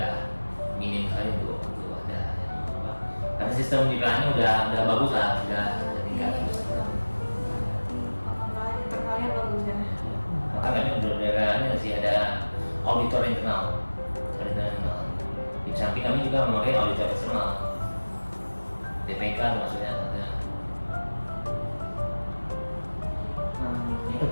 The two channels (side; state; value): both; inverted; correlation -1.00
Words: minim sekali untuk ada apa. Karena sistem di PLN udah bagus lah, udah tingkat. Internalnya bagus ya. Maka kami udah sih ada auditor internal. Di samping kami juga memakai auditor eksternal. DPK maksudnya ada.